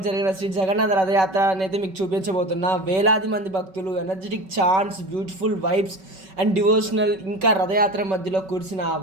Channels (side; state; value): left; late; 5.3 ms